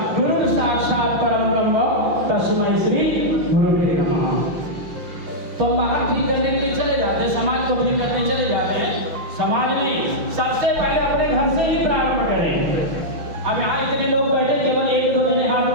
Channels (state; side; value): late; left; 6.0 ms